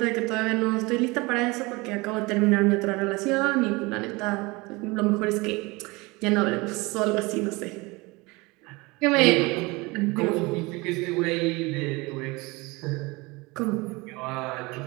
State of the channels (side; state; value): left; quieter; 24.4 dB